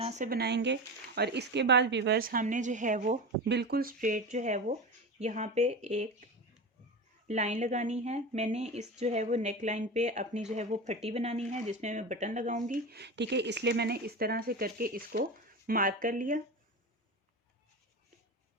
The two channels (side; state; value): both; normal; correlation 0.25